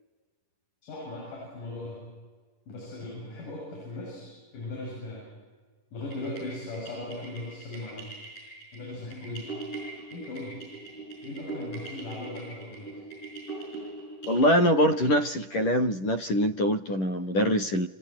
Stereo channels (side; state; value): right; late; 10 ms